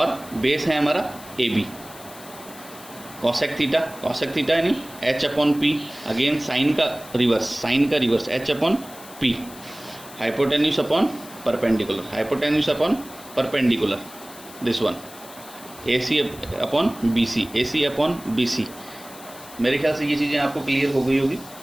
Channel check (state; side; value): noise; left; hiss, 18 dB below the sound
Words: बेस है हमारा AB। कॉसेक थीटा यानी H upon P, again sine का reverse H upon P। Hypotenuse upon perpendicular, this one AC upon BC, AC upon BC। मेरे ख्याल से ये चीज़ें आपको क्लियर हो गई होगी,